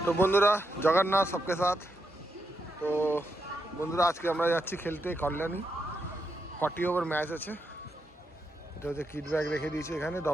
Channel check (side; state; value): both; normal; correlation 0.83